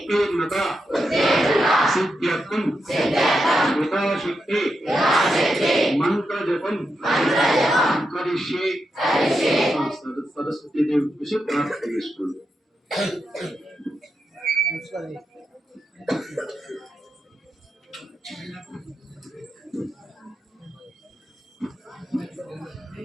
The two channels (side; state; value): both; normal; correlation 0.86